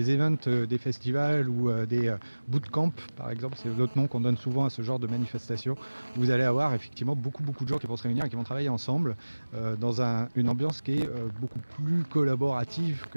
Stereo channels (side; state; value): both; inverted; correlation -1.00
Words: des festivals ou des bootcamps, par exemple, c'est l'autre nom qu'on donne souvent à ce genre de manifestation. Vous allez avoir effectivement beaucoup de gens qui vont se réunir et qui vont travailler ensemble dans une ambiance qui est beaucoup plus collaborative